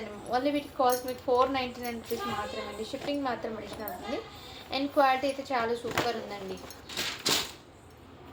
ఓన్లీ వీటికి కాస్ట్ మీకు 499 రూపీస్ మాత్రమే అండి. షిప్పింగ్ మాత్రం అడిషనల్ ఉంటుంది. అండ్ క్వాలిటీ అయితే చాలా సూపర్ ఉందండి.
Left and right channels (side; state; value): both; identical; correlation 1.00